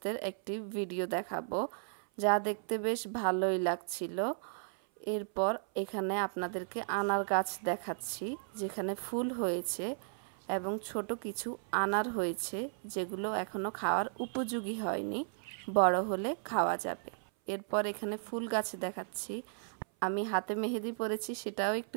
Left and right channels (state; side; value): silent; left; 54 dB below the other